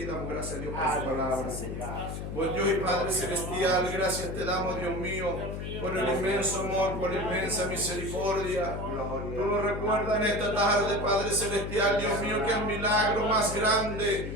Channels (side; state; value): left; noise; hum, 6 dB below the sound